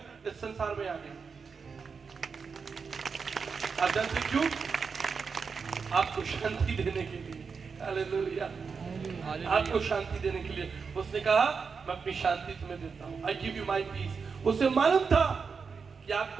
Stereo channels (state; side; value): quieter; left; 5.4 dB